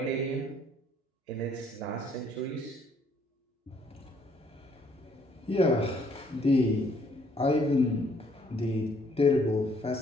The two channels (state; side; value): normal; both; correlation 0.65